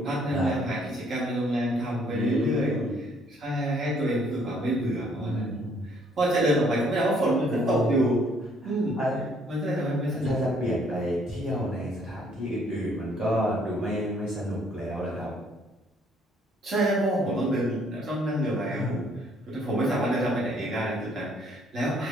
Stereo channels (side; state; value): both; normal; correlation 0.64